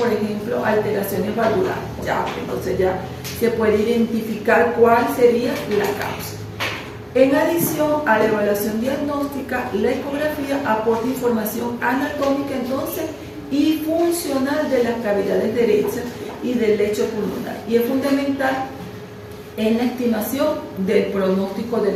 ejemplo, alteraciones valvulares. Entonces ya se puede identificar cuál sería la causa. En adición a la evaluación diagnóstica, la ecografía aporta información anatómica entonces y funcional de las cavidades derechas y del lecho pulmonar y es fundamental en la estimación del pronóstico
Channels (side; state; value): both; identical; correlation 1.00